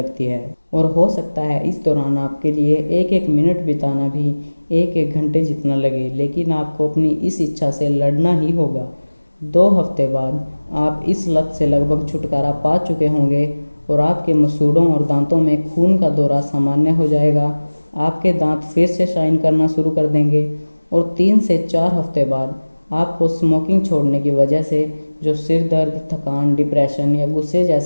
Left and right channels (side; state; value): both; inverted; correlation -1.00